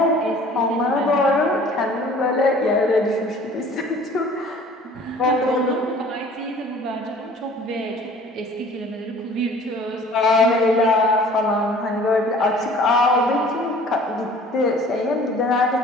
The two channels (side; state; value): both; normal; correlation 0.50